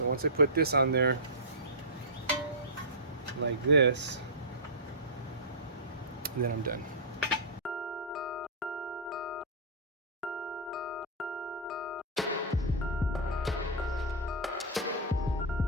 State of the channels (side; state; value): both; normal; correlation -0.13